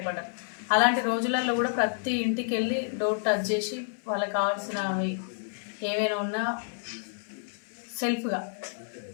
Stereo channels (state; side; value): silent; right; digital silence